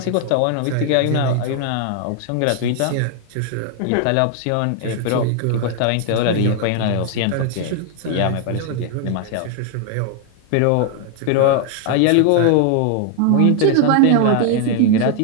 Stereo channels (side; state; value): both; different; correlation 0.00